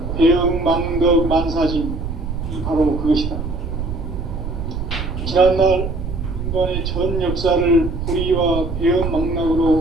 배음 망덕 만사진, 이 바로 그것이다. 지난날 인간의 전 역사를 불의와 배음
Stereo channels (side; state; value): right; noise; rumble, 5 dB below the sound